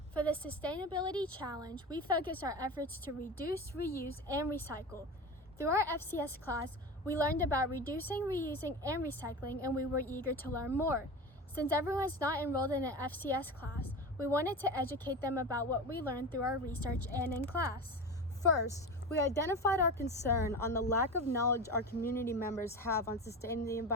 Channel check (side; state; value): both; normal; correlation 0.27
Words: For the Sustainability Challenge, we focus our efforts to reduce, reuse, and recycle. Through our FCS class, we learned about reducing, reusing, and recycling, and we were eager to learn more. Since everyone's not enrolled in an FCS class, we wanted to educate them about what we learned through our research and in class. First, we identified our concern on the lack of knowledge our community members have on sustaining the